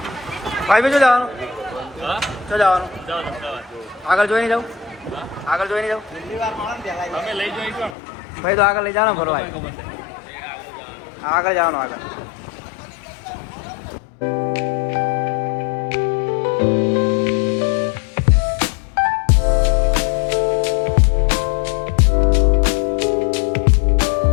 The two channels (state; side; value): drops out; right; at 8.0 s